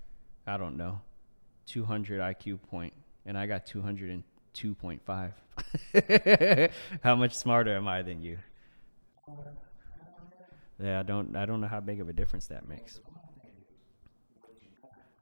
I don't know, 200 IQ point and I got 202.5, how much smarter am I than you? Yeah, I don't know how big of a difference that makes.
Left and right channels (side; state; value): both; inverted; correlation -1.00